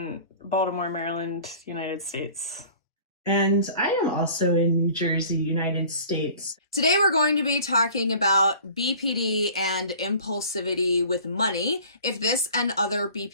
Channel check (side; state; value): both; inverted; correlation -0.46